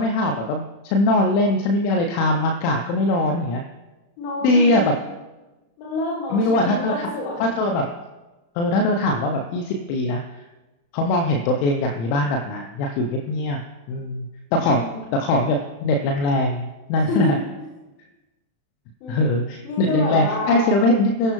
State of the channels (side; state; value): right; late; 35 ms